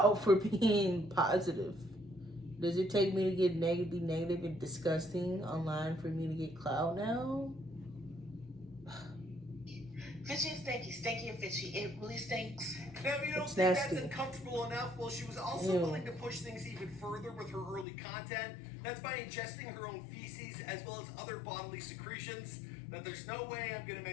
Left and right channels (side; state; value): right; drops out; at 17.9 s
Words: for being positive. Does it take me to get be negative and disgusting online for me to get clout now? Fishy and stinky, stinky and fishy. It really stinks. Now, if you don't It's think nasty. that's uncomfortable enough, well, she was also Ew. willing to push things even further with her early content. That's by ingesting her own feces as well as other bodily secretions that there's no way I'm going to